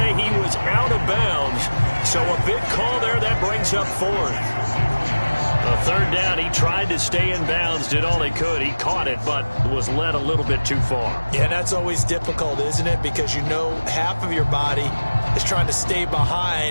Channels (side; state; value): both; inverted; correlation -1.00